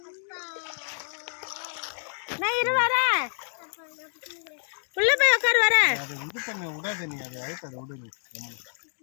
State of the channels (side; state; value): right; silent; digital silence